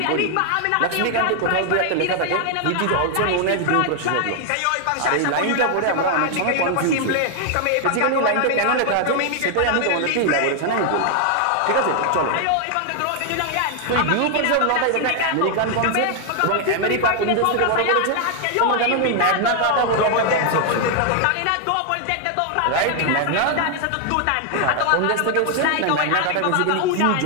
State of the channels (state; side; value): different; both; correlation 0.00